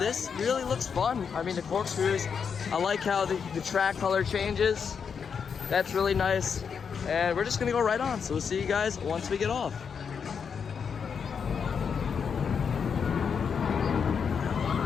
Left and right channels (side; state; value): right; quieter; 6.5 dB